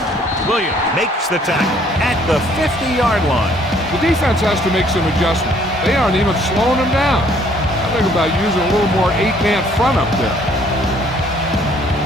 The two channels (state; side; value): normal; both; correlation 0.61